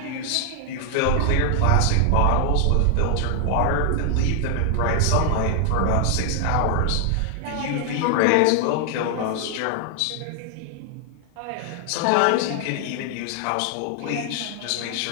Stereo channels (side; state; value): both; different; correlation 0.00